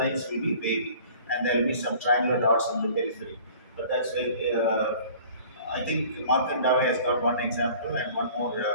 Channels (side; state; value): both; inverted; correlation -0.48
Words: will be wavy, and there will be some triangular dots on the periphery. But that's very. I think Markan Dave has got one example, and one more